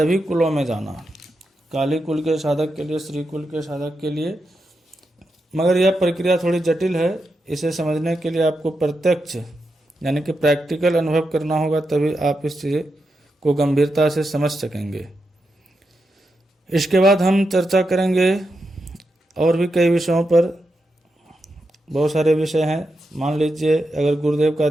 कुलों में जाना, काली कुल के साधक के लिए, श्री कुल के साधक के लिए। मगर यह प्रक्रिया थोड़ी जटिल है। इसे समझने के लिए आपको प्रत्यक्ष यानी कि प्रैक्टिकल अनुभव करना होगा, तभी आप इस चीज़ को गंभीरता से समझ सकेंगे। इसके बाद हम चर्चा करेंगे और भी कई विषयों पर। बहुत सारे विषय हैं। मान लीजिए अगर गुरुदेव का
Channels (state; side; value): normal; both; correlation 0.86